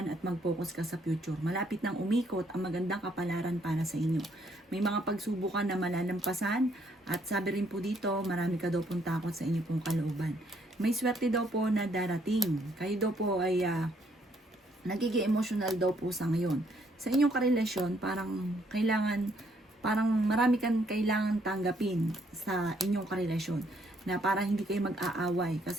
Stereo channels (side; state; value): both; normal; correlation 0.69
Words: at mag-focus ka sa future. Malapit nang umikot ang magandang kapalaran para sa inyo. May mga pagsubukan na malalampasan at sabi rin po dito, marami ka daw pong takot sa inyo pong kalooban. May swerte daw po na darating. Kayo daw po ay nagiging emotional daw po sa ngayon. Sa inyong karelasyon, parang marami kang kailangan tanggapin sa inyong karelasyon na para hindi kayo mag-aaway